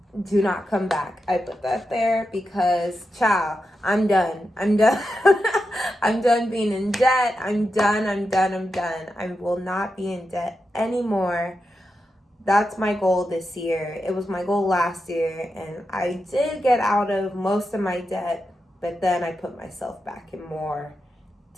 Do not come back. I put that there because, ciao, I'm done. I'm done. I'm done being in debt. I'm done. I will not be in debt anymore. That's my goal this year. It was my goal last year, and I did get out of most of my debt, but then I put myself back in more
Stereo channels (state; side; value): normal; both; correlation 0.88